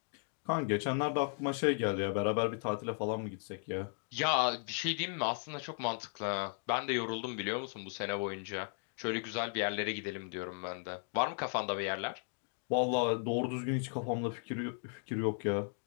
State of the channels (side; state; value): right; silent; 54 dB below the other